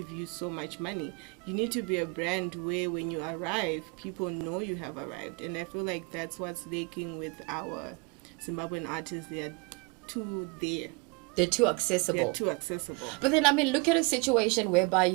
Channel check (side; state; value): left; quieter; 30.0 dB